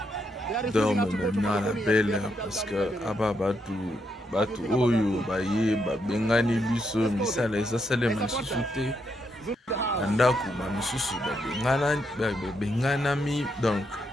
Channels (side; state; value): both; normal; correlation 0.79